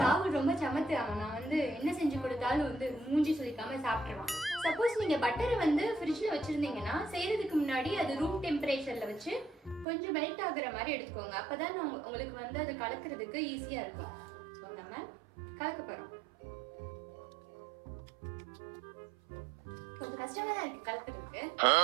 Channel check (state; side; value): drops out; left; at 9.9 s